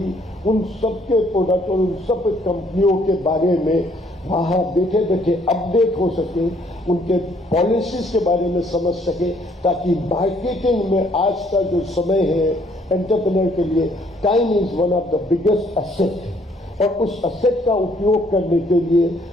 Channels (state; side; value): normal; both; correlation 0.65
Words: उन सब के प्रोडक्ट और उन सब कंपनियों के बारे में वहाँ बैठे बैठे अपडेट हो सके, उनके पॉलिसीज के बारे में समझ सके, ताकि मार्केटिंग में आज का जो समय है एंटरप्रेन्योर के लिए, time is one of the biggest asset, और उस एसेट का उपयोग करने के